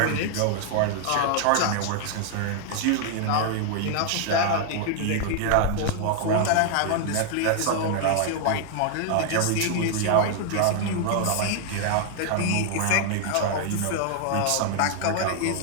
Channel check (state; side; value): different; both; correlation 0.00